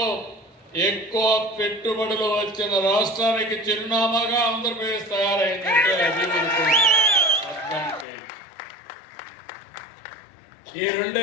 ఎక్కువ పెట్టుబడులు వచ్చిన రాష్ట్రానికి చిరునామాగా ఆంధ్రప్రదేశ్ తయారైందంటే అది మనకు అడ్వాంటేజ్. ఈ రెండే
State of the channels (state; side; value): drops out; right; at 8.1 s